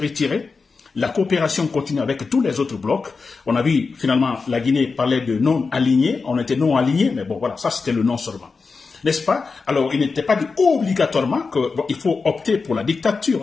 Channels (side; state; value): right; quieter; 4.6 dB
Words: La coopération continue avec tous les autres blocs. On a vu, finalement, la Guinée parlait de non-alignés. On était non-alignés, mais bon, voilà, ça c'était le non seulement. N'est-ce pas? Alors, il n'était pas dit obligatoirement qu'il faut opter pour la